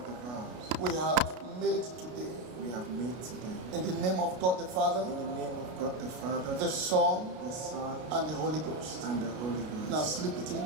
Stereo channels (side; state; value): left; late; 33 ms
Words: We have made today. In the name of God the Father. The Son. And the Holy Ghost. Now slip it in.